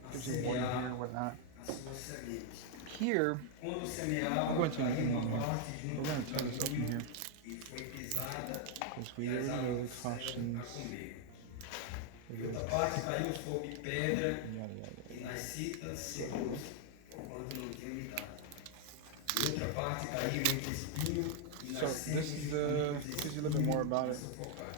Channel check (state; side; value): different; both; correlation 0.00